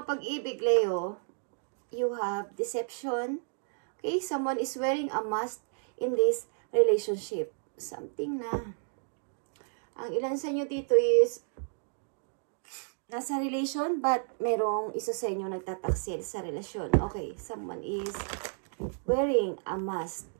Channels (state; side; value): silent; left; 57 dB below the other